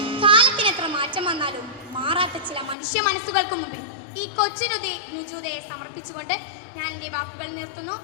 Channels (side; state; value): right; drops out; at 2.8 s